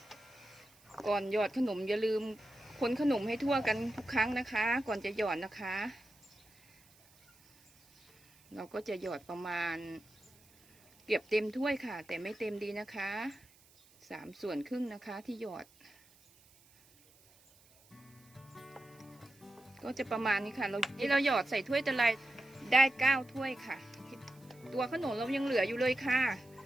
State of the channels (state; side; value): noise; right; hiss, 28 dB below the sound